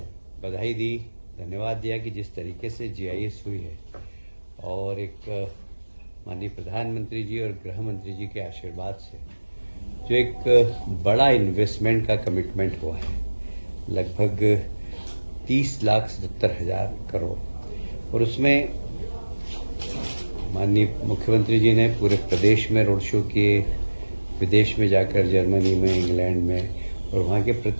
बधाई दी, धन्यवाद दिया कि जिस तरीके से जीआईएस हुई है और एक माननीय प्रधानमंत्री जी और गृह मंत्री जी के आशीर्वाद से जो एक बड़ा इन्वेस्टमेंट का कमिटमेंट हुआ है, लगभग 30,77,000 करोड़, और उसमें माननीय मुख्यमंत्री जी ने पूरे प्रदेश में रोड शो किए, विदेश में जाकर जर्मनी में, इंग्लैंड में, और वहाँ के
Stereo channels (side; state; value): both; inverted; correlation -1.00